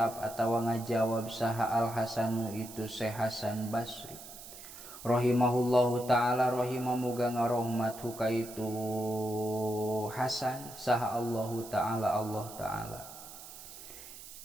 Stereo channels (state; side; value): noise; right; hiss, 14 dB below the sound